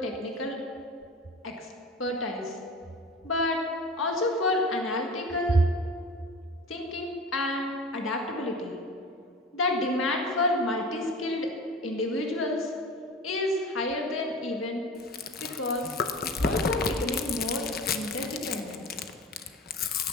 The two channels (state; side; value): normal; both; correlation 0.36